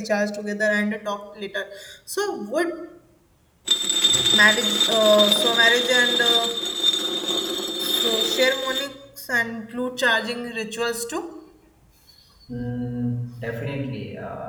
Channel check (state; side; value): identical; both; correlation 1.00